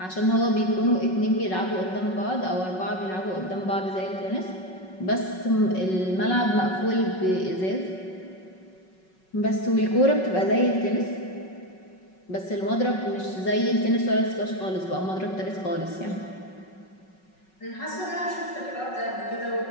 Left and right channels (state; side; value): late; right; 5.4 ms